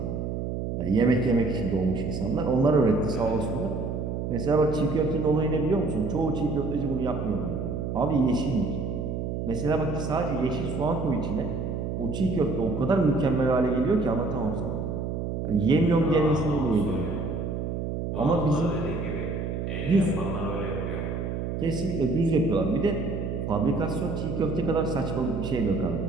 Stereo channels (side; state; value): right; noise; hum, 3 dB below the sound